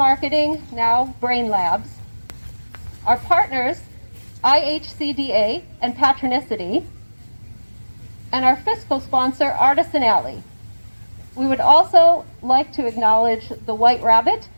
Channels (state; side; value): inverted; both; correlation -1.00